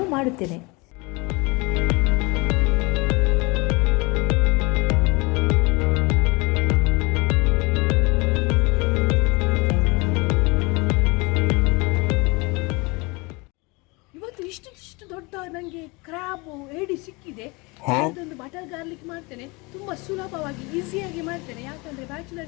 ಮಾಡುತ್ತೇನೆ. ಇವತ್ತು ಇಷ್ಟು ದೊಡ್ಡ ನನಗೆ ಕ್ರ್ಯಾಬು ಏಡಿ ಸಿಕ್ಕಿದೆ. ಅದೊಂದು ಬಟರ್ ಗಾರ್ಲಿಕ್ ಮಾಡ್ತೇನೆ, ತುಂಬ ಸುಲಭವಾಗಿ ಈಸಿಯಾಗಿ ಮಾಡ್ತೇನೆ. ಯಾಕಂದರೆ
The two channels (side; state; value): right; quieter; 26.6 dB